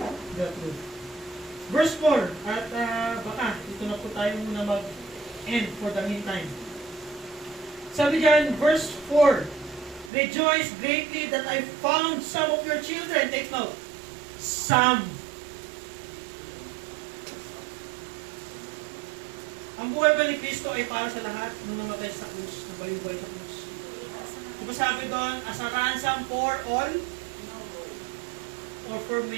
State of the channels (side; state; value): left; drops out; at 10.1 s